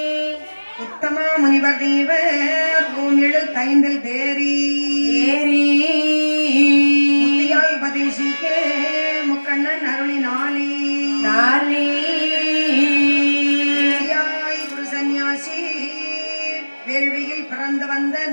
உத்தமா முனிவர் தேவர் பூமிழு தைந்தில் தேரி முத்தியால் உபதேசிக்க முக்கண்ணன் அருளினாலே குரு சந்நியாசி வேள்வியில் பிறந்து வந்த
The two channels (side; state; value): both; inverted; correlation -1.00